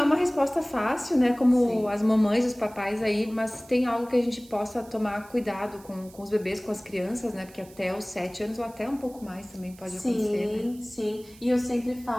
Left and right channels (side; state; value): right; noise; hiss, 24 dB below the sound